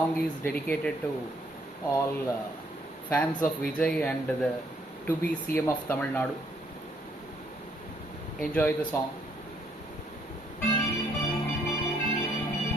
is dedicated to all fans of Vijay and the to be CM of Tamil Nadu. Enjoy the song.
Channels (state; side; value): normal; both; correlation 0.69